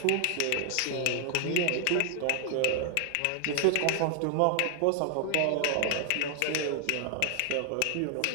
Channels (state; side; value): different; both; correlation 0.00